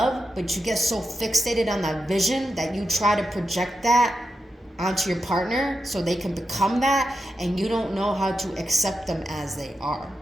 but you get so fixated on that vision that you try to project that onto your partner so they can become that, and you don't know how to accept them as they are.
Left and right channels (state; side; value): normal; both; correlation 0.88